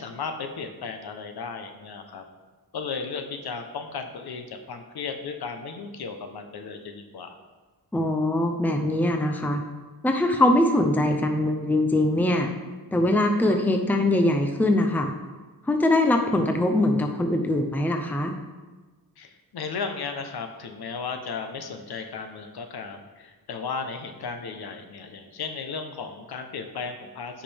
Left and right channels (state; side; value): normal; both; correlation 0.66